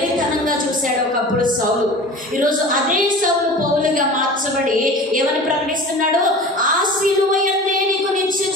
చూశాడు ఒకప్పుడు సౌలు. ఈరోజు అదే సౌలు పౌలుగా మార్చబడి ఏమని ప్రకటిస్తున్నాడు? ఆ సిలువ యందే నీకు నిత్య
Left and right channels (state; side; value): normal; both; correlation 0.37